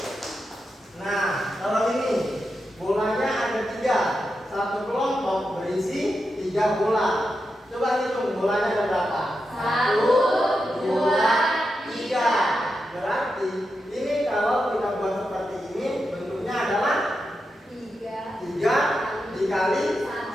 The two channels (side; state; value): both; normal; correlation 0.87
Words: Nah, kalau ini bolanya ada 3. Satu kelompok berisi 3 bola. Coba hitung bolanya ada berapa? 1, 2, 3. Berarti ini kalau kita buat seperti ini bentuknya adalah 3 3 dikali